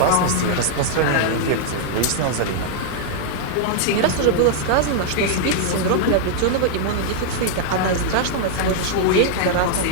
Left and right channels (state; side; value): different; both; correlation -0.01